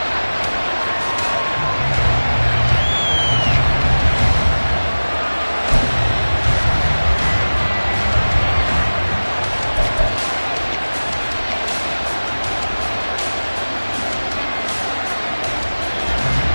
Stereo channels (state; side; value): inverted; both; correlation -1.00